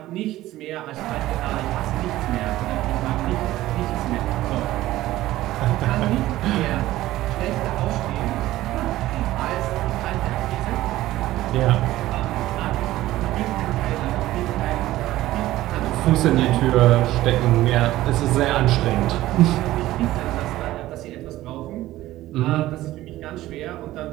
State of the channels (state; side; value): quieter; left; 15.7 dB